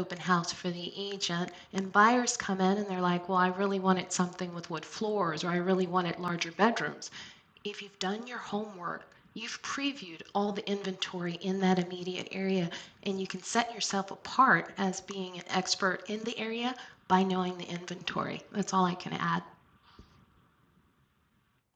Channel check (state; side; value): identical; both; correlation 1.00